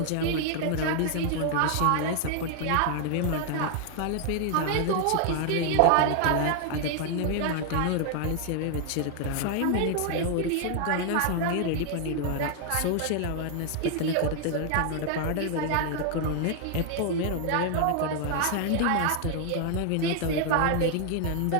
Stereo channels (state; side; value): different; both; correlation 0.00